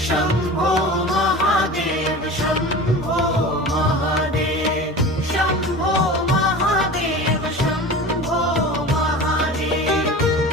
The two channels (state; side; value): normal; both; correlation 0.34